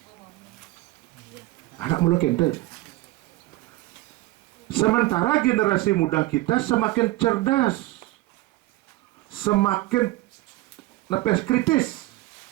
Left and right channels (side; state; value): left; quieter; 18.4 dB